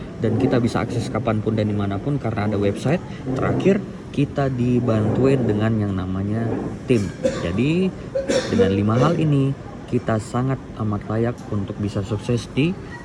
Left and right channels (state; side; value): identical; both; correlation 1.00